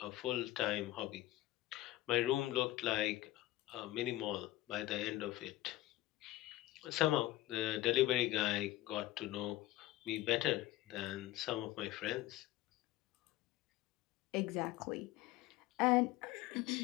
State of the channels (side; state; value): right; quieter; 16.5 dB